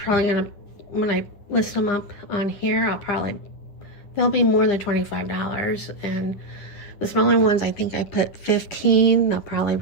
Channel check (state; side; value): late; right; 10 ms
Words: going to, when I list them up on here, they'll be more than $25, and the smaller ones, I think I put 15. I'll probably